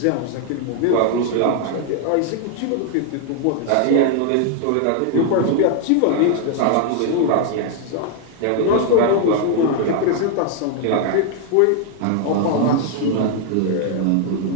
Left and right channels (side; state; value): both; different; correlation 0.00